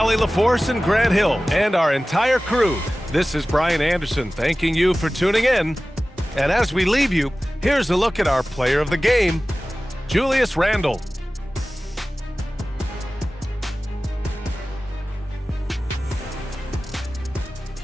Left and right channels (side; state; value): both; normal; correlation 0.97